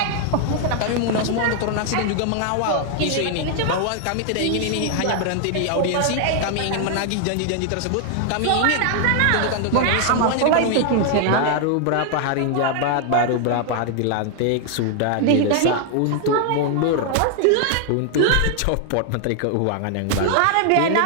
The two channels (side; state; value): both; different; correlation 0.00